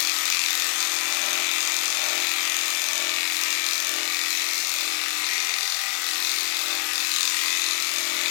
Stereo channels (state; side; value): quieter; right; 34.5 dB